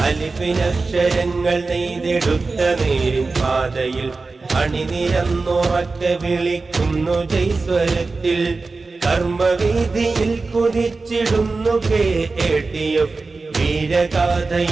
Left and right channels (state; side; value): quieter; left; 3.8 dB